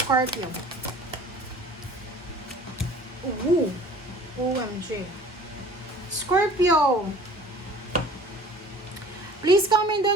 OMG. Scorpio. Please comment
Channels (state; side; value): normal; both; correlation 0.47